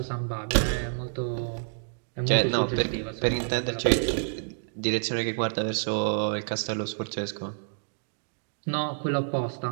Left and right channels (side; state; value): left; silent; digital silence